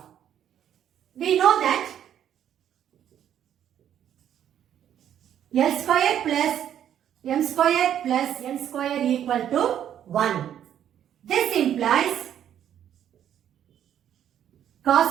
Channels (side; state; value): left; quieter; 10.1 dB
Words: We know that L square plus M square plus N square equal to 1. This implies cos